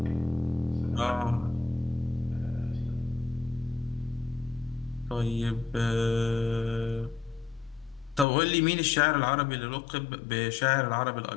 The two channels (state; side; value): drops out; right; at 8.2 s